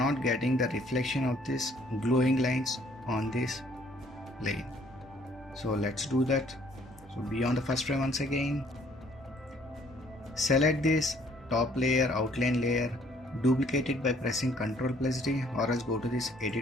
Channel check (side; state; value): both; normal; correlation 0.62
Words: getting the reflection of this glowing lines on this plane. So let's do that. So be on the first frame once again, select this top layer, outline layer, duplicate it by pressing Ctrl+D, or else go to this